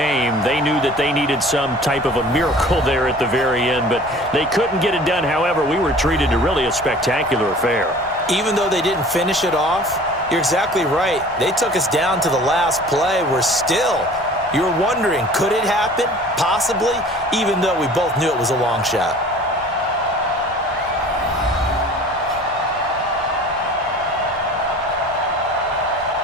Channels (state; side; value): normal; both; correlation 0.46